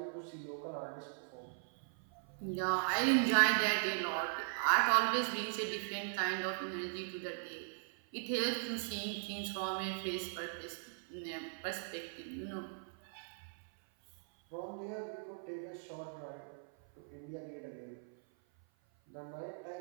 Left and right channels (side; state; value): left; silent; 52 dB below the other